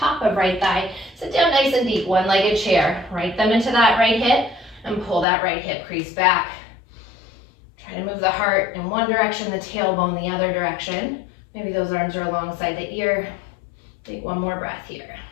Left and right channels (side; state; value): right; drops out; at 5.2 s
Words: of right thigh. Sit down nice and deep, one-legged chair. Right thumb into that right hip and pull that right hip crease back. Try to move the heart in one direction, the tailbone the other direction. Maybe those arms are alongside the ear. Take one more breath here.